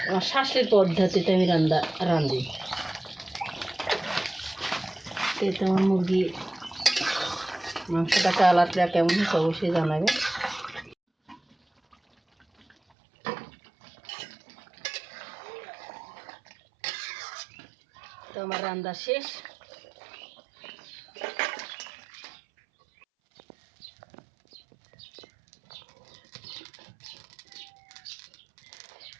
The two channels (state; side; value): drops out; left; at 12.8 s